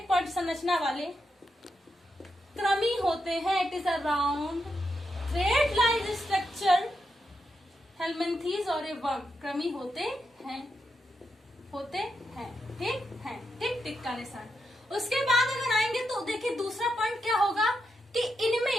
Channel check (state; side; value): normal; both; correlation 0.84